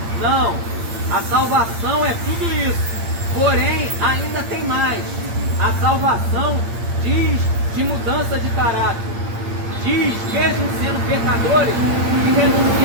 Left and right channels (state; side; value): late; left; 8.7 ms